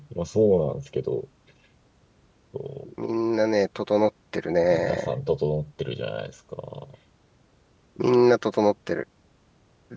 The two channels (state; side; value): identical; both; correlation 1.00